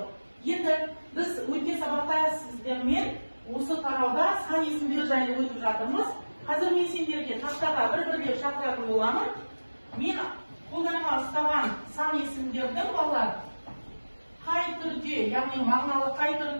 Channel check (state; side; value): inverted; both; correlation -1.00